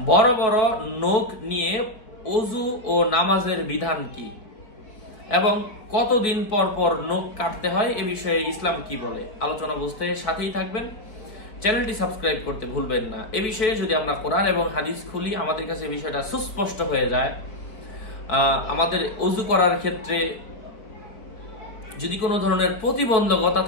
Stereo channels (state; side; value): late; right; 4.5 ms